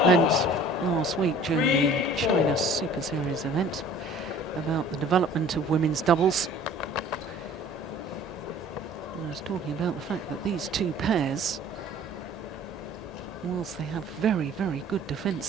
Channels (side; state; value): both; normal; correlation 0.49